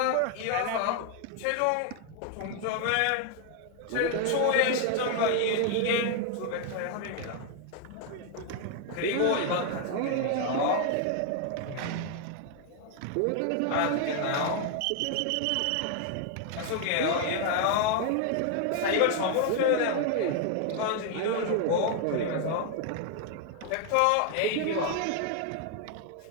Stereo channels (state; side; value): different; both; correlation 0.00